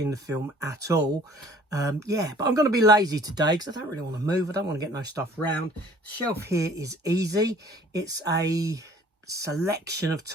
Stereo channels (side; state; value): both; normal; correlation 0.53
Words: the film at all. Yeah, but I'm going to be lazy today because I don't really want to move. I don't want to get no stuff around. The shelf here is easy. It's a selection of